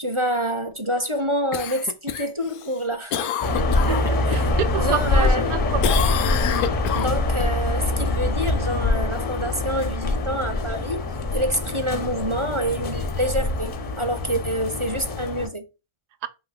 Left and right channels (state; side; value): late; left; 1.4 ms